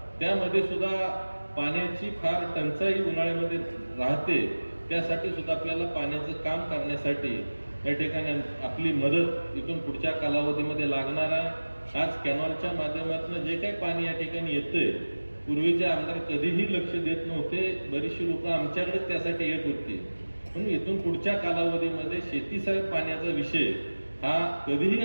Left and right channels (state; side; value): inverted; both; correlation -1.00